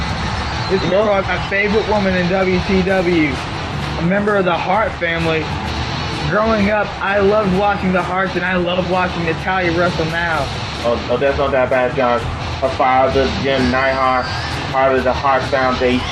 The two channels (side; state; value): both; identical; correlation 1.00